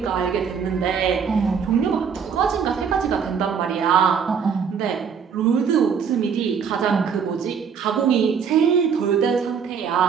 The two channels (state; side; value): quieter; left; 6.7 dB